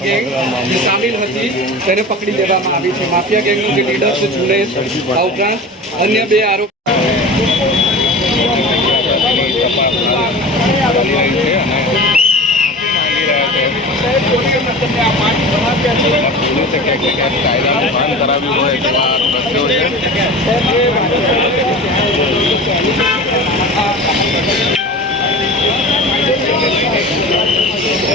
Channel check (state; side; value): normal; both; correlation 0.34